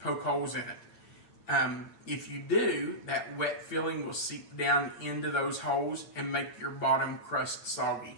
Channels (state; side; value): late; right; 8.6 ms